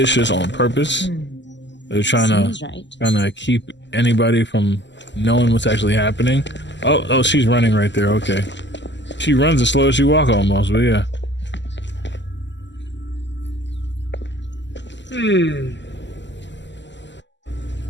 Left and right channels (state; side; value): late; right; 0.53 ms